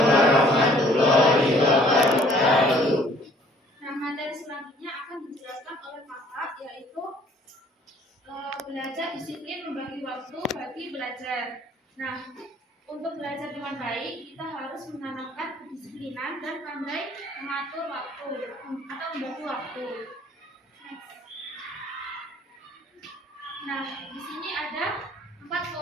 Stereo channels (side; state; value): both; normal; correlation 0.57